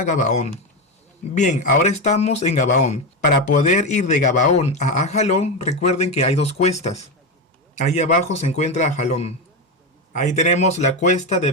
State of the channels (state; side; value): normal; both; correlation 0.13